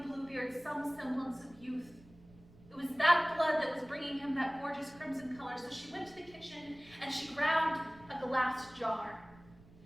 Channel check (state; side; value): noise; right; rumble, 24 dB below the sound